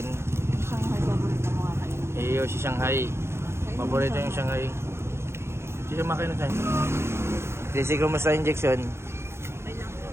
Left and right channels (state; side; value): late; left; 0.12 ms